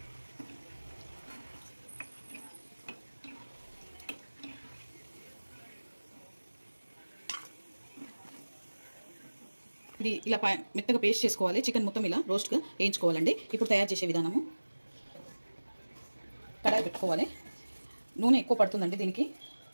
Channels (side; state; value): both; inverted; correlation -1.00